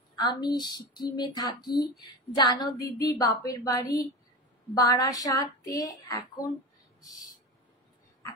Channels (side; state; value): both; normal; correlation 0.25